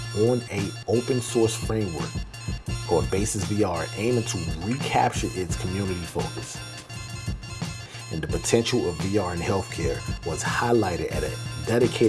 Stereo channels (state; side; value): identical; both; correlation 1.00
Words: on an open source framework called Basis VR, aiming to recapture its community focus. And the potential of VR in healthcare was highlighted at a